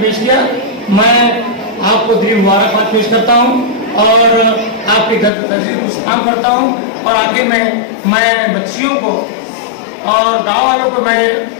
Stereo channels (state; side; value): drops out; right; at 5.3 s